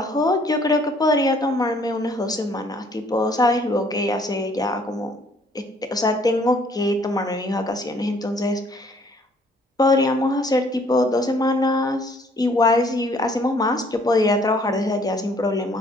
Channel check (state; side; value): normal; both; correlation 0.61